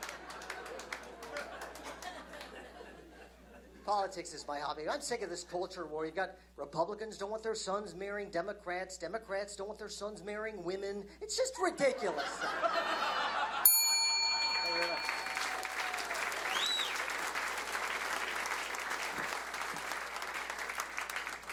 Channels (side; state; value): both; identical; correlation 1.00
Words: politics is my hobby. I'm sick of this culture war. You've got Republicans don't want their sons marrying Democrats. Democrats don't want their sons marrying women. It's just ridiculous. Thank you very much.